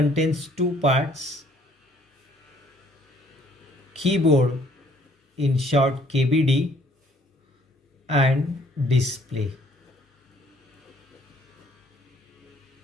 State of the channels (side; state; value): both; normal; correlation 0.61